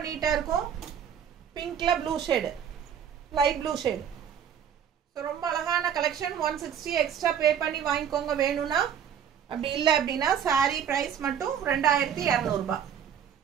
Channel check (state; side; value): quieter; left; 8.6 dB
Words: நீட்டா இருக்கும். பிங்க்ல blue shade, light blue shade. So ரொம்ப அழகான கலெக்ஷன். 160 எக்ஸ்ட்ரா பே பண்ணி வாங்கிக்கோங்க வேணும்னா. அப்படி இல்லை அப்படின்னா சாரி ப்ரைஸ் மட்டும் ₹2200.